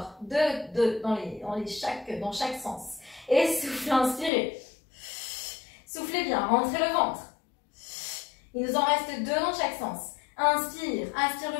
2 dans chaque sens. Et souffle, inspirez. Soufflez bien, rentrez le ventre. Il nous en reste 2 dans chaque sens. Inspire, aspire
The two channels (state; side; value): drops out; right; at 4.3 s